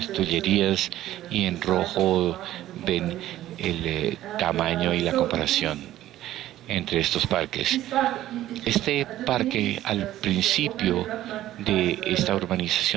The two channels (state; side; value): quieter; left; 13.9 dB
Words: Tullerías, y en rojo ven el tamaño y la comparación entre estos parques. Este parque, al principio de esta